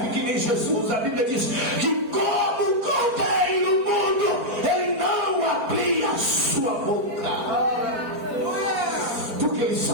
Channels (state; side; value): late; left; 4.5 ms